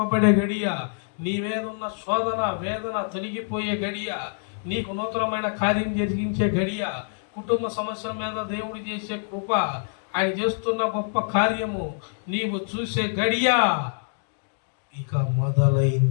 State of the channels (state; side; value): silent; right; digital silence